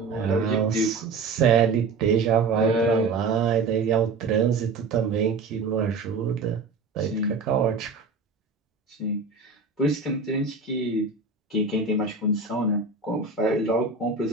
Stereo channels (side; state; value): left; quieter; 4.3 dB